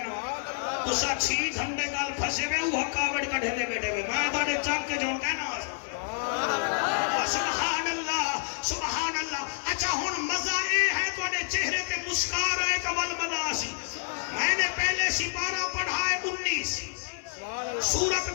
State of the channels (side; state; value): right; silent; 59 dB below the other